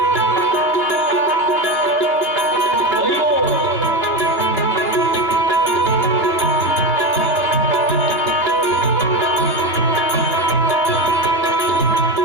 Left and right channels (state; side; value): late; right; 2.8 ms